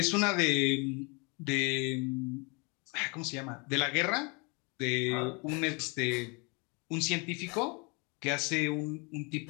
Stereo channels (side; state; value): right; quieter; 31.1 dB